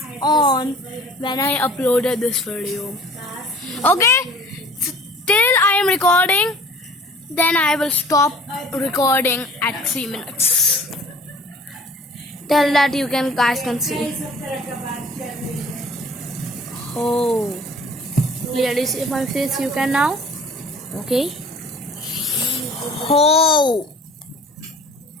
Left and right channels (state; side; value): normal; both; correlation 0.49